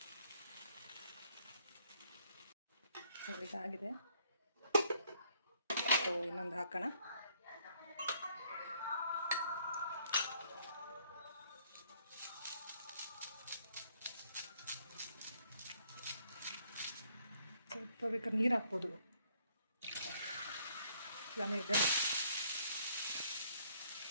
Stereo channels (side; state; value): both; inverted; correlation -0.66